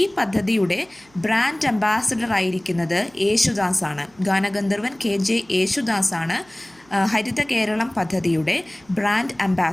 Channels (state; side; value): noise; right; hum, 30 dB below the sound